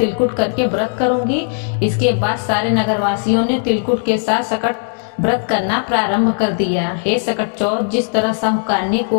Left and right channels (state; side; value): silent; right; 68 dB below the other